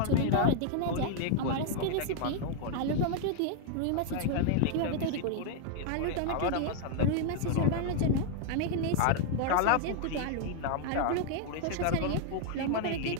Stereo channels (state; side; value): different; both; correlation 0.00